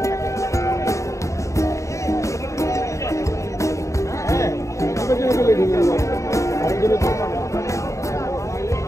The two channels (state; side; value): late; right; 0.15 ms